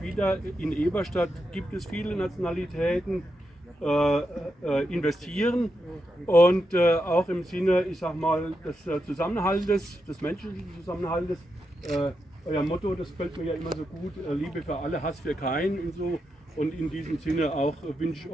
wieder in Eberstadt, gibt es viele Nationalitäten, investieren und auch im Sinne, ich sag mal, des Zusammenhaltes, des menschlichen Zusammenhaltes. Euer Motto, das gefällt mir ja immer so gut, Liebe für alle, Hass für keinen und so. Und in diesem Sinne auch wünsche ich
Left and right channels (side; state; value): both; normal; correlation 0.85